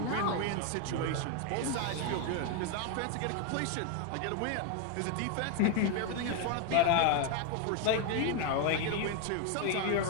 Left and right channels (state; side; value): different; both; correlation 0.01